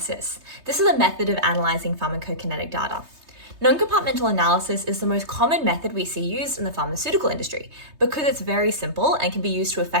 This is a method of analysing pharmacokinetic data. Non-compartmental analysis is the most common method we see used in the pharmaceutical industry because it's very simple and can be used to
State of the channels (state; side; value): late; left; 3.3 ms